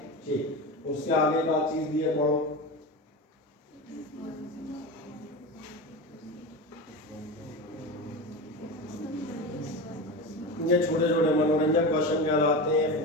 ठीक। उसके आगे का चीज़ दिए पढ़ो। ये छोटे छोटे मनोरंजक क्वेश्चन कहलाते हैं।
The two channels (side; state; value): both; normal; correlation 0.24